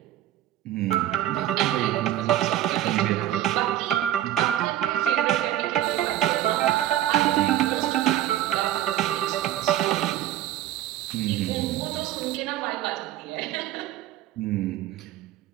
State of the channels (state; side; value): quieter; left; 12.9 dB